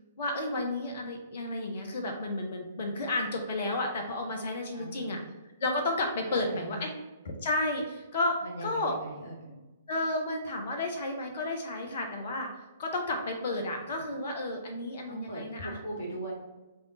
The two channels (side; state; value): both; inverted; correlation -0.53